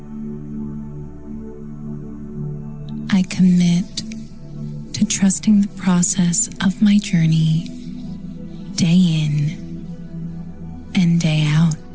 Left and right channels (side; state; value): both; identical; correlation 1.00